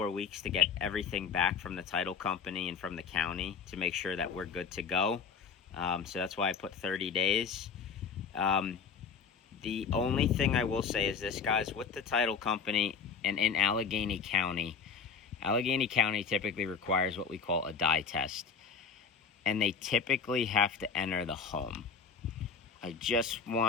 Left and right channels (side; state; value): right; quieter; 5.9 dB